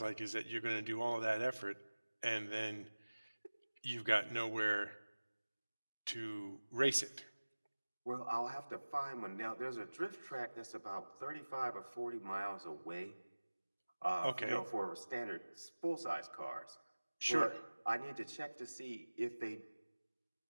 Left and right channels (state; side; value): inverted; both; correlation -1.00